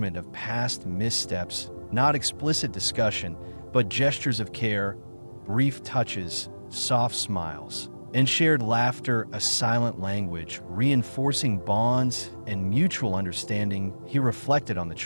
of past missteps, not explicit discussion, but gestures of care, brief touches, soft smiles, and shared laughter, a silent language, reinforcing bonds and mutual understanding. He reflected on the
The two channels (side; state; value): both; inverted; correlation -1.00